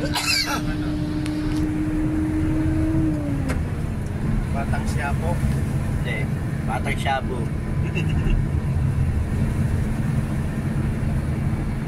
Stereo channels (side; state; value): both; identical; correlation 1.00